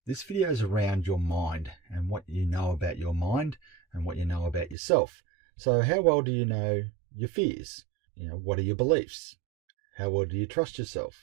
This video is around your mind and what you know about your mind and what you know about yourself. So how well do you know your fears? What are your beliefs? How well do you trust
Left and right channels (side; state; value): left; drops out; at 4.8 s